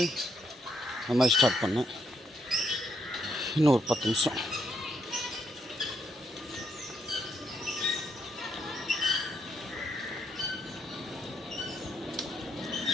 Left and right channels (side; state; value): both; normal; correlation 0.76